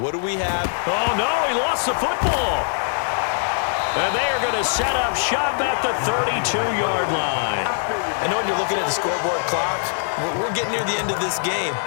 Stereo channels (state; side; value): silent; right; digital silence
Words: do we have? Oh, no, he lost the football. And they are going to set up shop at the 32-yard line. I know when you're looking at the scoreboard clock, we're getting near the end of this game,